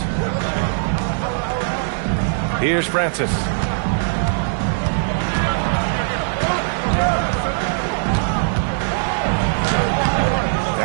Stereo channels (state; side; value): silent; left; digital silence